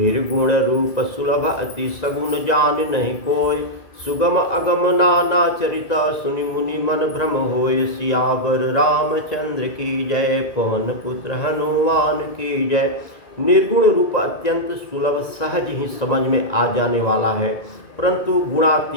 रूप सुलभ अति सगुण जान नहीं कोय, सुगम अगम नाना चरित सुनि मुनि मन भ्रम होय। सियावर रामचंद्र की जय, पवन पुत्र हनुमान की जय। निर्गुण रूप अत्यंत सुलभ सहज ही समझ में आ जाने वाला है, परंतु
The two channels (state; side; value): late; right; 1.9 ms